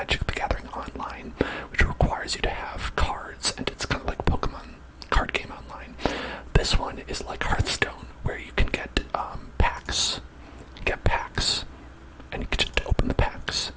the Gathering Online, which requires you to have cards, and it's kind of like Pokemon card game online. This one is like Hearthstone, where you can get packs. Get packs, and you can just open the packs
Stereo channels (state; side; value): identical; both; correlation 1.00